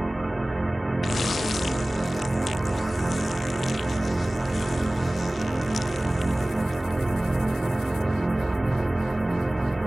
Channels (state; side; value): normal; both; correlation 0.98